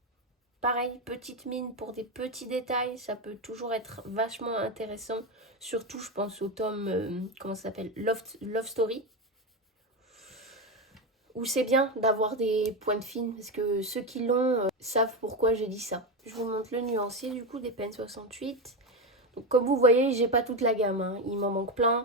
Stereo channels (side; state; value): both; normal; correlation 0.14